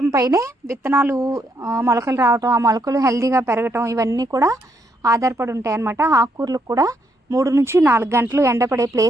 పైనే విత్తనాలు మొలకలు రావటం, ఆ మొలకలు హెల్తీగా పెరగటం ఇవన్నీ కూడా ఆధారపడి ఉంటాయి అన్నమాట. ఆకుకూరలకు కూడా 3 నుంచి 4 గంటలు ఎండపడే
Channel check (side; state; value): both; normal; correlation 0.75